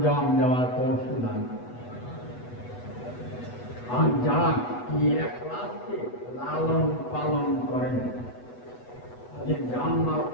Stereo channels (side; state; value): right; late; 8.1 ms